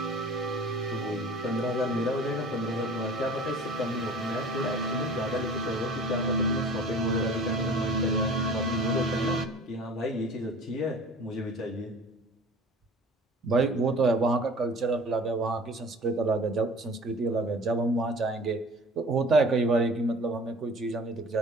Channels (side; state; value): both; normal; correlation 0.44